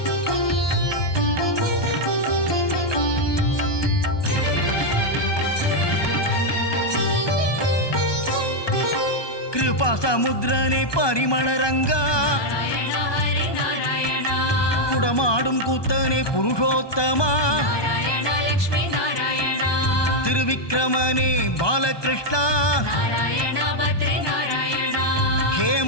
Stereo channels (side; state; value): right; late; 1.2 ms